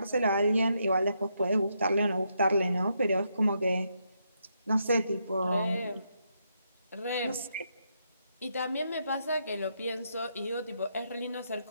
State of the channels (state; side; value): inverted; both; correlation -0.79